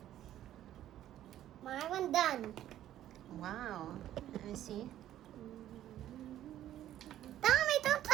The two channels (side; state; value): left; quieter; 12.3 dB